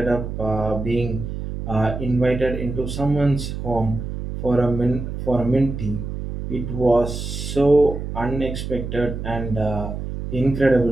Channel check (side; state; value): right; noise; hum, 6 dB below the sound